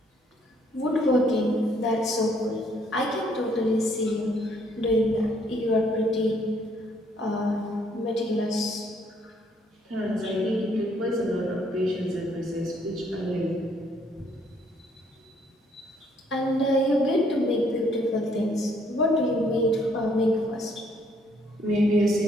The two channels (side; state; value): both; normal; correlation 0.67